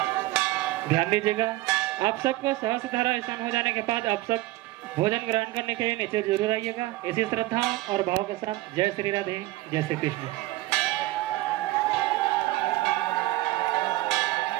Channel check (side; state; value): left; quieter; 18.5 dB